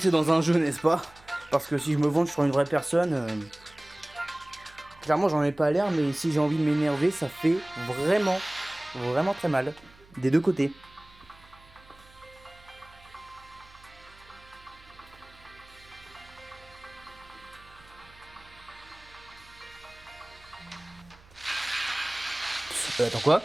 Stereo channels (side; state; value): right; noise; hum, 25 dB below the sound